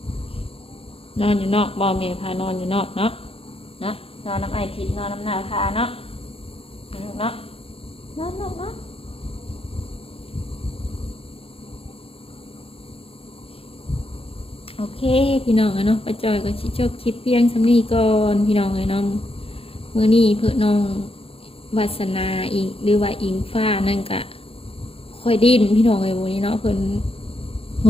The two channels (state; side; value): late; right; 0.27 ms